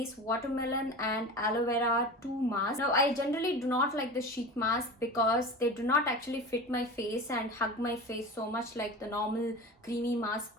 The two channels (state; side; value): normal; both; correlation 0.32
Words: Watermelon and Aloe Vera 2 mask. Now I generally do not like the sheet mask because they do not actually fit my face and hug my face so much like the normal creamy mask